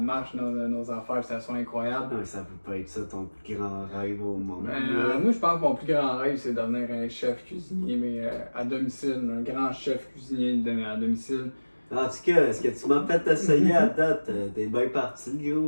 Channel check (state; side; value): inverted; both; correlation -1.00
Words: dans nos affaires, que ça soit incroyable. Non, ça peut pas être ça ton plus grand rêve au monde. Moi, je pense que mon plus grand rêve, c'est devenir un chef cuisinier, mais à domicile, un grand chef cuisinier à domicile. En tout cas, est-ce que tu m'as fait essayer à date? T'es bien parti,